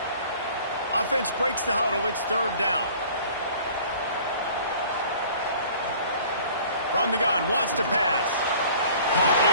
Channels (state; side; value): inverted; both; correlation -0.49